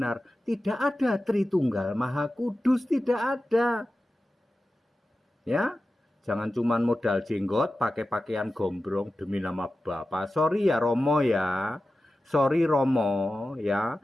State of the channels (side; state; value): both; normal; correlation 0.94